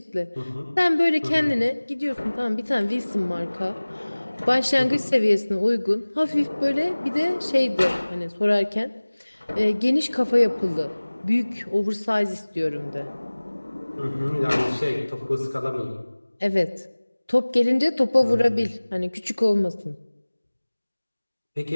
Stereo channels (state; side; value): inverted; both; correlation -1.00